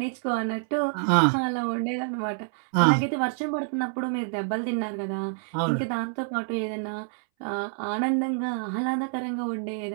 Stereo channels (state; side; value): silent; left; 60 dB below the other